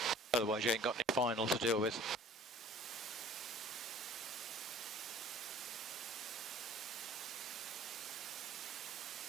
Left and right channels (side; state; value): both; normal; correlation 0.49